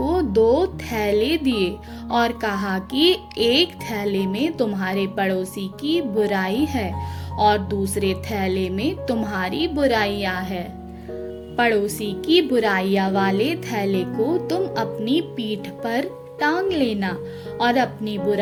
2 थैले दिए और कहा कि एक थैले में तुम्हारे पड़ोसी की बुराई है और दूसरे थैले में तुम्हारी बुराइयां है। पड़ोसी की बुराइयां वाले थैले को तुम अपनी पीठ पर टांग लेना और अपनी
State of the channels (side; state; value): both; identical; correlation 1.00